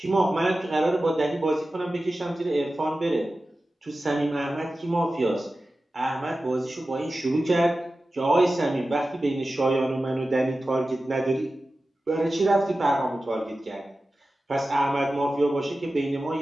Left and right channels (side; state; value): both; normal; correlation 0.94